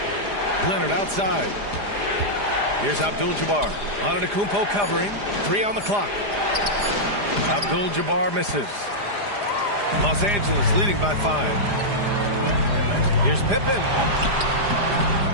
Leonard outside. Here's Abdul-Jabbar. Antetokounmpo covering. 3 on the clock. Abdul-Jabbar misses. Los Angeles leading by 5. Here's Pippen.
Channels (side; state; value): left; late; 4.9 ms